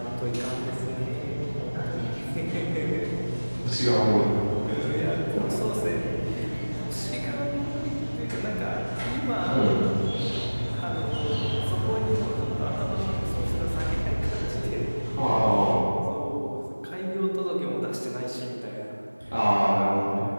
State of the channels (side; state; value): both; inverted; correlation -1.00